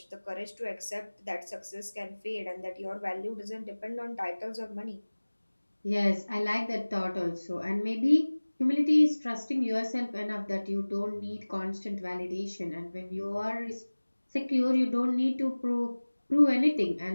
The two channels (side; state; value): both; inverted; correlation -1.00